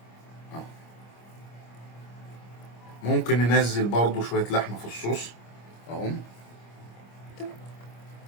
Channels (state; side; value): late; right; 25 ms